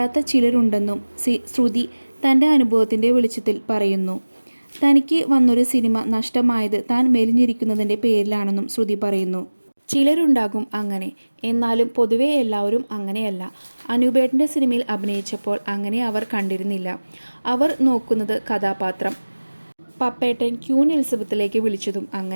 ചിലരുണ്ടെന്നും ശ്രുതി തൻ്റെ അനുഭവത്തിൻ്റെ വെളിച്ചത്തിൽ പറയുന്നു. തനിക്ക് വന്നൊരു സിനിമ നഷ്ടമായത് താൻ മെലിഞ്ഞിരിക്കുന്നതിൻ്റെ പേരിലാണെന്നും ശ്രുതി പറയുന്നു. ചിലരുണ്ടാകും അങ്ങനെ, എന്നാലും പൊതുവെ എല്ലാവരും അങ്ങനെയല്ല. അനൂപേട്ടൻ്റെ സിനിമയിൽ അഭിനയിച്ചപ്പോൾ അങ്ങനെ അവർ കണ്ടിരുന്നില്ല. അവർ നോക്കുന്നത് കഥാപാത്രം. പപ്പേട്ടൻ ക്യൂൻ എലിസബത്തിലേക്ക് വിളിച്ചതും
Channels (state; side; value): inverted; both; correlation -1.00